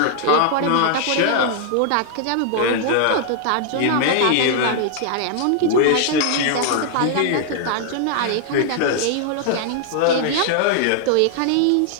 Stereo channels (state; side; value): different; both; correlation 0.00